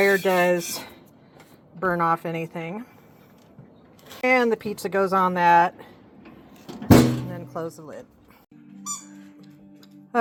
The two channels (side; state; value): both; identical; correlation 1.00